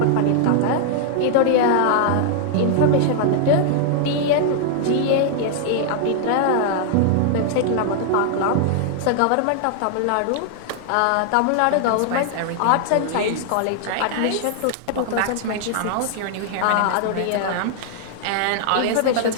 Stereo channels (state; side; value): different; both; correlation -0.01